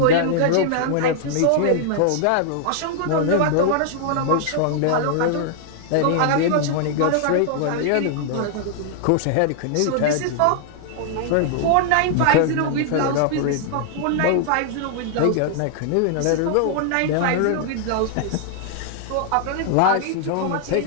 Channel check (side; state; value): both; different; correlation 0.00